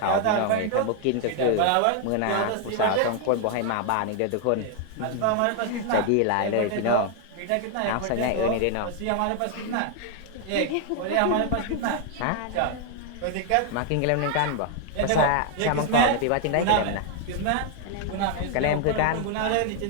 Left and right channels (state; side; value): different; both; correlation 0.00